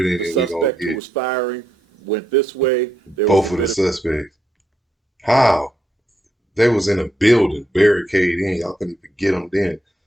the that we're going suspect to who get was firing went this way. There both was of the suspects? How? They was in a building, barricade in. Y'all couldn't even get them then.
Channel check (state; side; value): normal; both; correlation 0.79